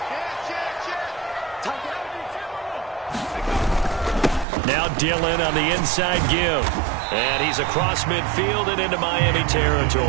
Now Dillon on the inside give. And he's across midfield and into Miami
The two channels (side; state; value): left; drops out; at 4.5 s